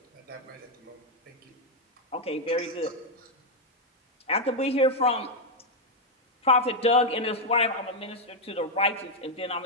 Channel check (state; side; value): normal; both; correlation 0.00